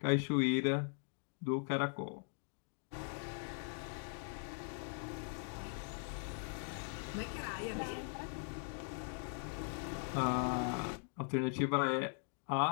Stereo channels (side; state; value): right; silent; 51 dB below the other